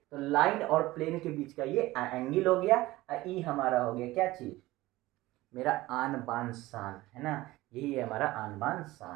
तो लाइन और प्लेन के बीच का ये एंगल हो गया, ई हमारा हो गया क्या चीज, मेरा आन बान शान, है ना, यही है हमारा आन बान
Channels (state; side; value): quieter; left; 18.3 dB